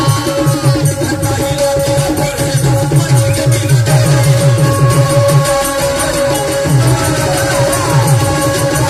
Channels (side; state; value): both; identical; correlation 1.00